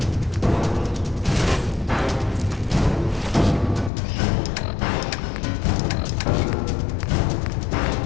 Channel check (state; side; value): drops out; right; at 3.9 s